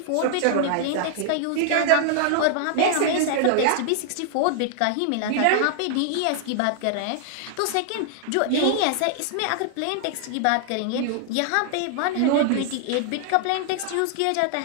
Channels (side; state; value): both; different; correlation -0.01